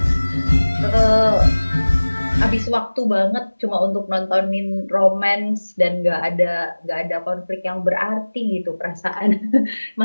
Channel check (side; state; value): both; inverted; correlation -1.00